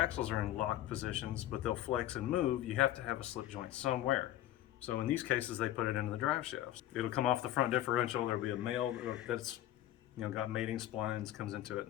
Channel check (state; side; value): quieter; right; 13.5 dB